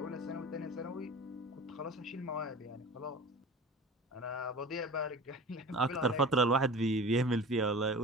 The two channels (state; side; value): normal; both; correlation 0.36